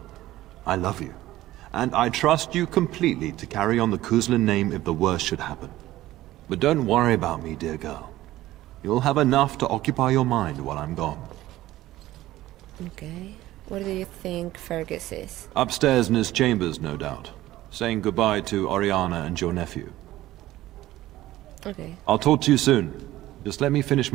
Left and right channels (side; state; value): left; quieter; 15.6 dB